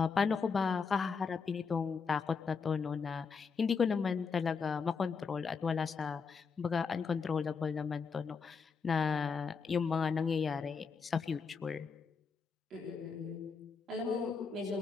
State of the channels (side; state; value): right; quieter; 5.5 dB